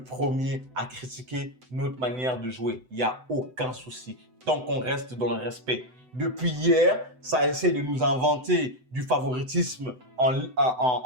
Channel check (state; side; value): late; left; 7.9 ms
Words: premier à critiquer notre manière de jouer. Il n'y a aucun souci, tant qu'on reste dans le respect. Depuis hier, ça essaie de nous inventer du favoritisme en